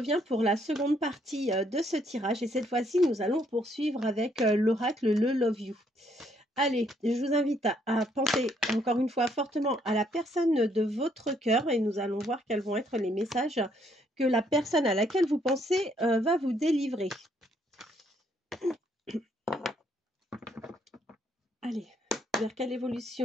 pour la seconde partie de ce tirage et cette fois-ci, nous allons poursuivre avec l'oracle Le Love You. Allez, je vous invite à penser encore une fois fortement à la personne de votre cœur et nous allons voir quels vont être les messages que la personne à laquelle vous pensez va vous délivrer. Allez, vers quelle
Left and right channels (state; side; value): normal; both; correlation 0.70